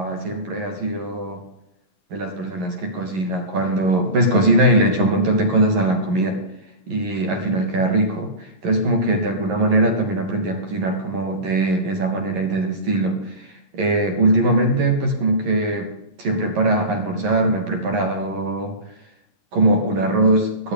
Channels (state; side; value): late; left; 11 ms